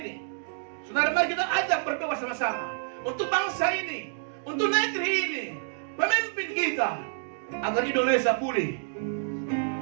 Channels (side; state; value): left; silent; digital silence